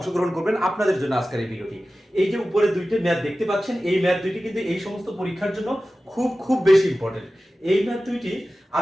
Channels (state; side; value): normal; both; correlation 0.95